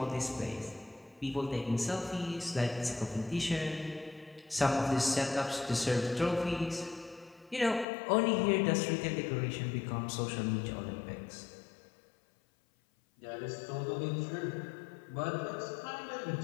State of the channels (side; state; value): right; drops out; at 7.9 s